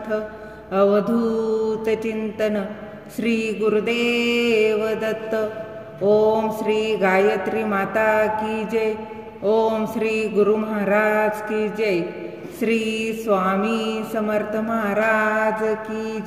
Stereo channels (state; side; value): identical; both; correlation 1.00